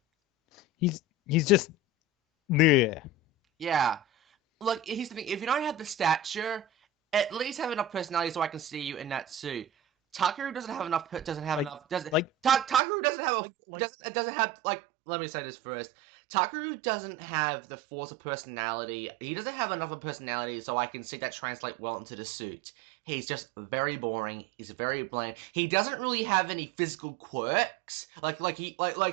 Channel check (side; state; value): left; drops out; at 12.8 s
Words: He's just. Yeah. Yeah. Look, here's the thing. If you don't have the stature, at least have enough personality so I can see you in that suit. Takeru doesn't have enough. Takeru doesn't have Let me say this first. Takeru doesn't have the force of personality. He doesn't have enough of personality so I can see that translate well into the suit. He's just very boring. He's very bland. He doesn't really have any physical quirks. He